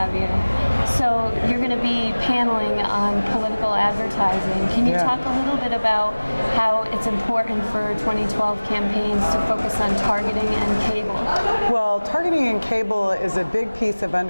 you. So you're going to be paneling on political advertising. Can you talk a little bit about how it's important for 2012 campaigns to focus on targeting and cable? Well, targeting and cable is a big piece of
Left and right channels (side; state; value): both; inverted; correlation -1.00